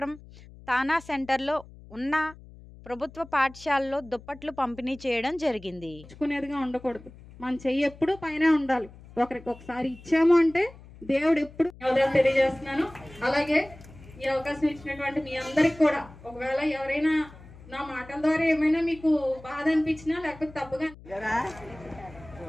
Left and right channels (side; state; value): left; noise; hum, 20 dB below the sound